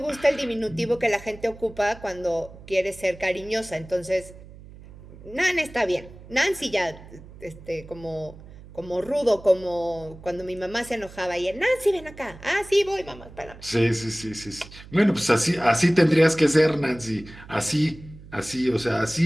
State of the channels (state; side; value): noise; right; hum, 18 dB below the sound